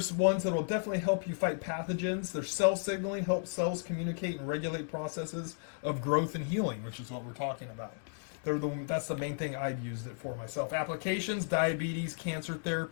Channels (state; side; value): silent; right; digital silence